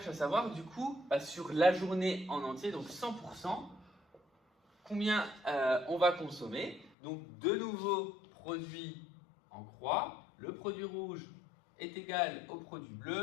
à savoir, du coup, sur la journée en entier, donc 100%, combien on va consommer. Donc de nouveau, produit en croix. Le produit rouge est égal au produit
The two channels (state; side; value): drops out; right; at 6.9 s